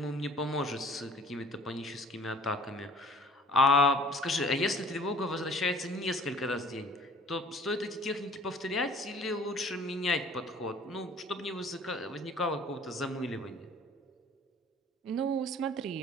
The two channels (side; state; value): both; normal; correlation 0.50